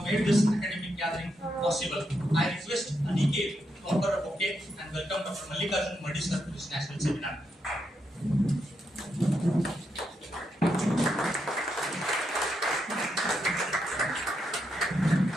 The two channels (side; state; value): both; normal; correlation 0.82